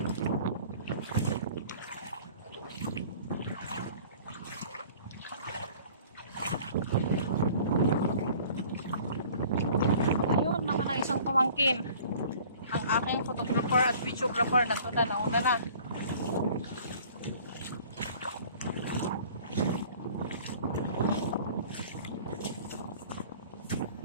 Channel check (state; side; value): inverted; both; correlation -0.49